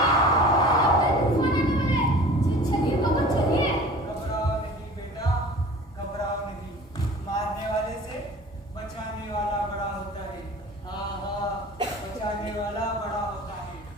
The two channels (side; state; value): both; normal; correlation 0.42